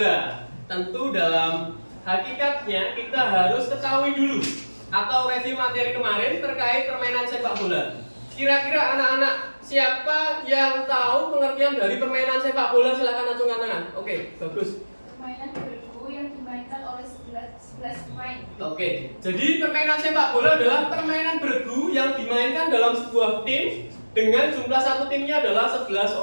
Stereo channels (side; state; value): both; inverted; correlation -1.00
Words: Tentu dalam hakikatnya kita harus ketahui dulu atau review materi kemarin terkait permainan sepak bola. Kira-kira anak-anak siapa yang tahu pengertian dari permainan sepak bola? Silakan acungkan tangan. Oke, bagus. Permainan bergu yang dimainkan oleh 11 pemain. Oke, jadi permainan sepak bola adalah permainan bergu yang dimainkan dalam sebuah tim dengan jumlah satu timnya adalah 11